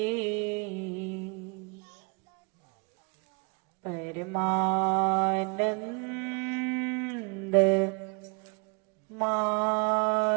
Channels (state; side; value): quieter; left; 32.3 dB